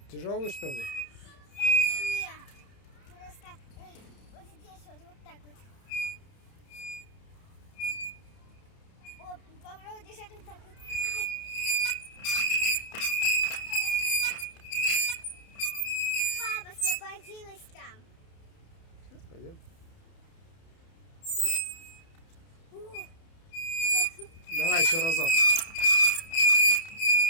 Тяжелый, что ли? Нет, просто вот здесь вот так вот. О, попробуй держать вот так вот. Ай. Папа освободилась там. Сейчас пойдем. О, Давай еще разок.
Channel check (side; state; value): right; late; 30 ms